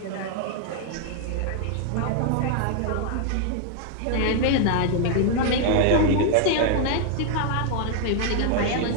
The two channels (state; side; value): different; both; correlation 0.00